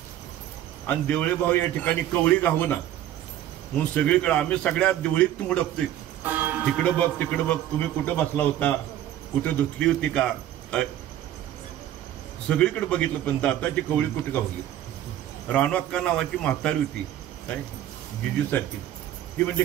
आणि देवळे भाऊ या ठिकाणी कवळी घावना म्हणून सगळीकडे आम्ही सगळ्या देवळीत मुडकतोय. तिकडं बघ तिकडं बघ, तुम्ही कुठं बसला होता, कुठं धुतली होती का? सगळीकडे बघितलं, पण दाताची कवळी कुठे गावली. रानोअक्का नावाची म्हातारी होती काय जिजीसारखी. ती म्हणजे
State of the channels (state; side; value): quieter; left; 12.1 dB